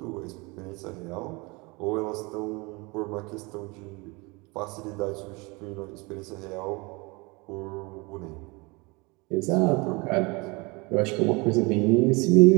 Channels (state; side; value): quieter; left; 26.6 dB